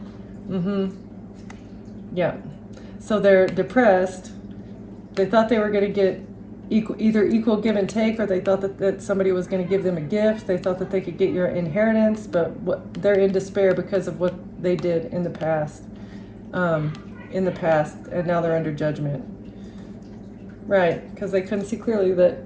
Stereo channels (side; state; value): both; identical; correlation 1.00